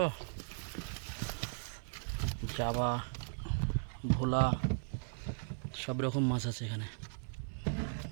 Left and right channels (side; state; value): left; silent; 53 dB below the other